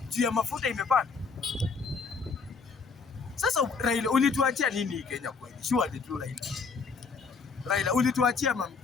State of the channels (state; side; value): quieter; right; 5.0 dB